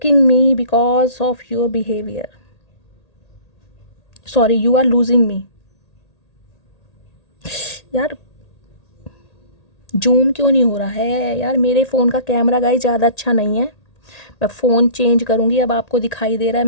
me because of your behavior, sorry you are losing me। यार जूम क्यों नहीं हो रहा है यार, मेरे फ़ोन का कैमरा गाइस ज़्यादा अच्छा नहीं है, मैं फ़ोन चेंज करूँगी। अब आपको दिखाई दे रहा है,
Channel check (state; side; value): late; right; 1.8 ms